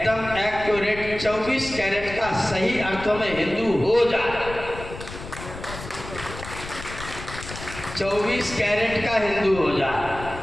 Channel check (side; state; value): left; noise; rumble, 12 dB below the sound